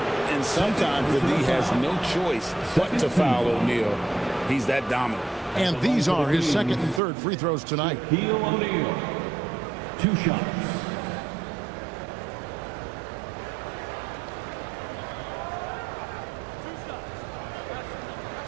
sometimes the D has no choice but to foul O'Neal. He's that dominant. And these are his 2nd and 3rd free throws tonight. Shaquille O'Neal, 2 shots.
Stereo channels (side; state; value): left; drops out; at 7.0 s